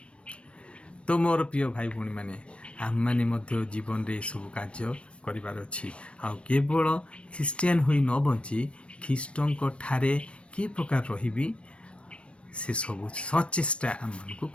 तो मोर प्रिय भाई भौणी माने आम माने मध्य जीवन रे सब कार्य करिबार अछि। आ केवल ख्रीस्टियान होई न बंची ख्रीष्टंक ठारे कि प्रकार रहिबी से सब सचेष्टा आम मानकु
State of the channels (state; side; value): late; right; 0.060 ms